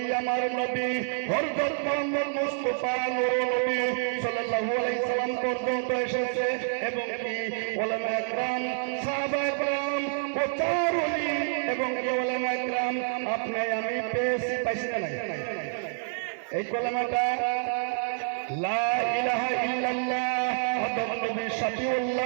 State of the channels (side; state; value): left; silent; 59 dB below the other